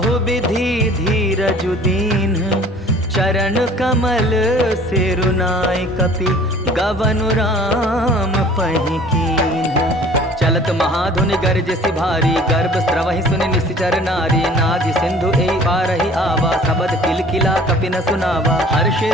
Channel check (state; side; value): normal; both; correlation 0.50